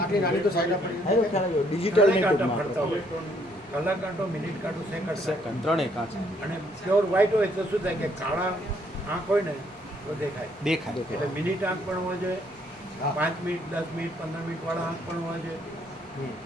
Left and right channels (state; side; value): normal; both; correlation 0.68